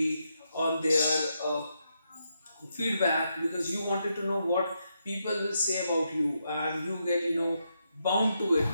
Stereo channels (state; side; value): inverted; both; correlation -0.82